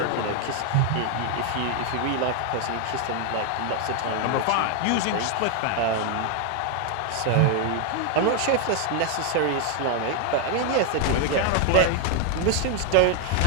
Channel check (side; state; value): both; different; correlation 0.00